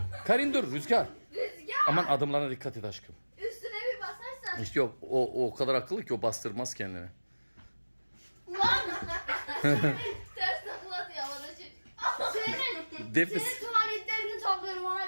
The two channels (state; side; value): inverted; both; correlation -1.00